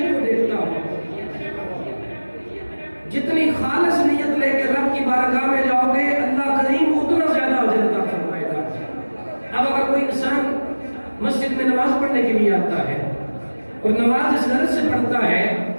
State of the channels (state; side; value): inverted; both; correlation -1.00